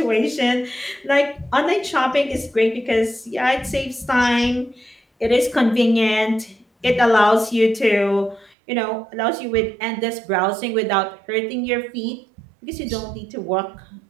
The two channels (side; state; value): left; drops out; at 8.6 s